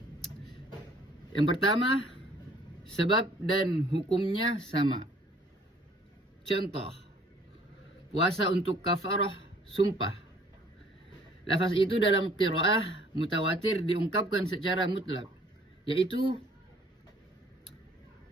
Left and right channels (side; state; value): both; normal; correlation 0.57